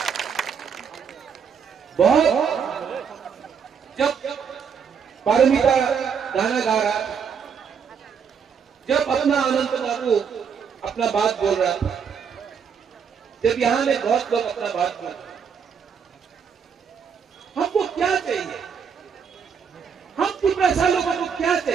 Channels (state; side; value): quieter; left; 6.8 dB